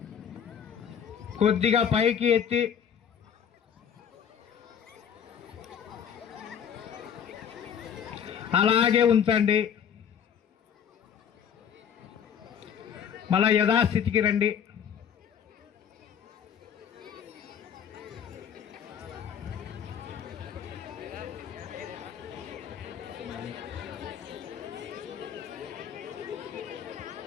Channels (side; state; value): right; quieter; 8.1 dB